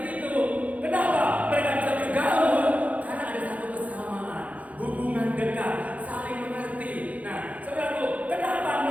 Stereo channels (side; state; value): left; late; 0.070 ms